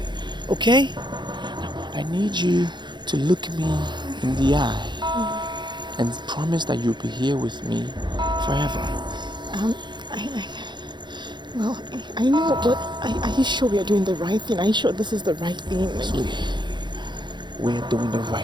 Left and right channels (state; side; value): late; left; 0.22 ms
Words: Okay? Now, I need you to look me in the eye and promise that you'll be here with me forever. I know, but are you sure we are doing the right thing? Are you sure this is the right thing? Sweetie, we are doing the